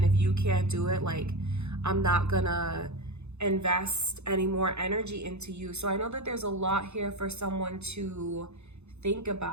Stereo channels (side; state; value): left; late; 0.81 ms